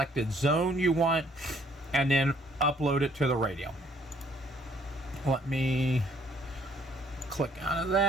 zone you want and then upload it to the radio. Let me click out of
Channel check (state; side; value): normal; both; correlation 0.64